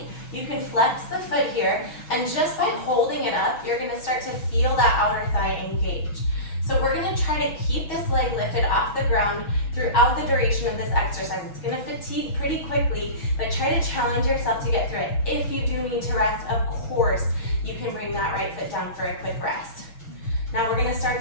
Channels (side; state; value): right; late; 6.2 ms